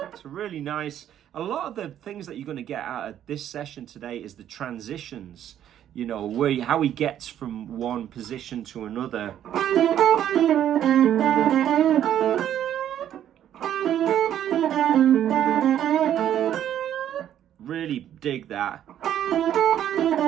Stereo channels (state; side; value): quieter; left; 10.7 dB